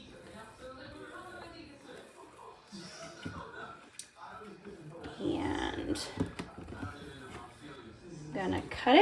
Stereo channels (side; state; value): both; identical; correlation 1.00